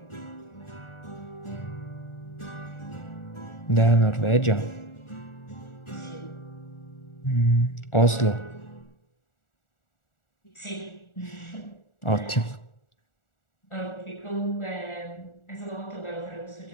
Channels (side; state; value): right; late; 1.4 ms